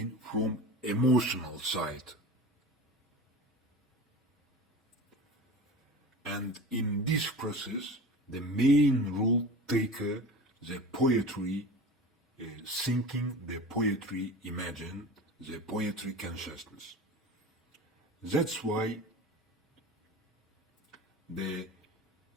from emotional side. And in this process, the main role taker, the poetry thinking, the poetry imagine, the poetry consciousness. That's why the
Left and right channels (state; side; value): normal; both; correlation 0.34